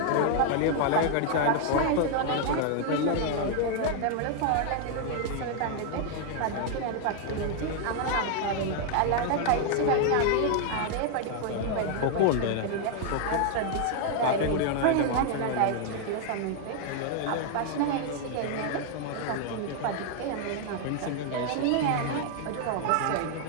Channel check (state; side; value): different; both; correlation 0.00